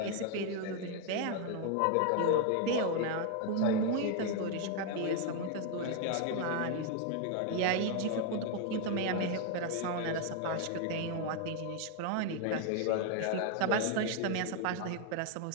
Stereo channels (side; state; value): both; different; correlation 0.01